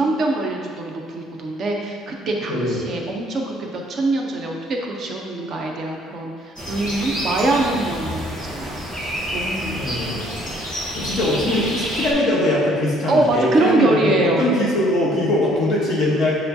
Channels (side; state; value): both; normal; correlation 0.62